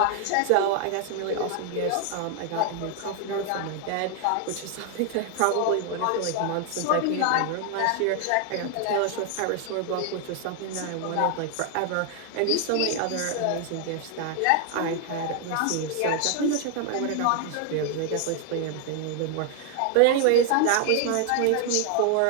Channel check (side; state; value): both; different; correlation 0.01